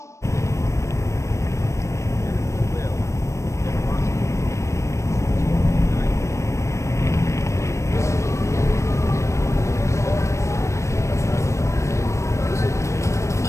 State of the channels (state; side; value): late; right; 0.14 ms